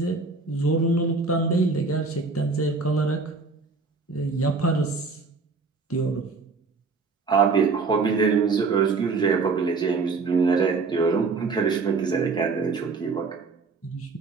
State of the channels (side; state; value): left; quieter; 4.3 dB